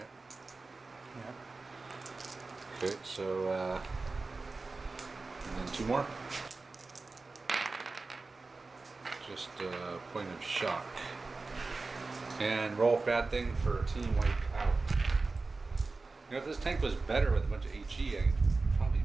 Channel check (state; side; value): quieter; left; 3.7 dB